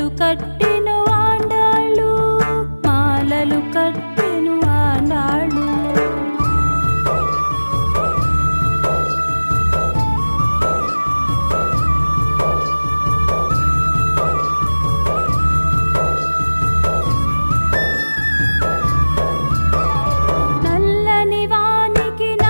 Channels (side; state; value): both; inverted; correlation -1.00